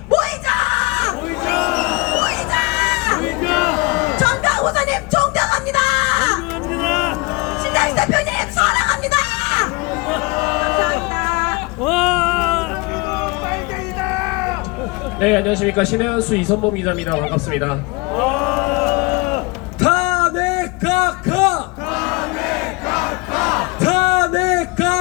네, 안녕하십니까. 신해안수 이선범 기자입니다. 반갑습니다. 탄핵 각하! 탄핵 각하! 탄핵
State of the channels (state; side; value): quieter; right; 26.1 dB